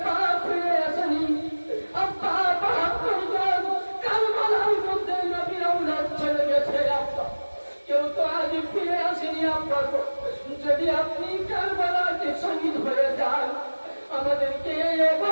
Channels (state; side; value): inverted; both; correlation -1.00